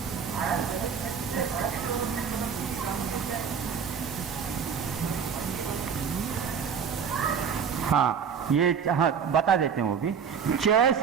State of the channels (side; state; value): left; quieter; 6.8 dB